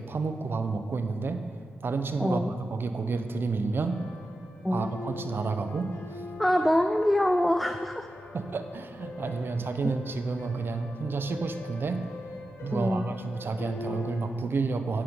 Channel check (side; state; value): both; normal; correlation 0.90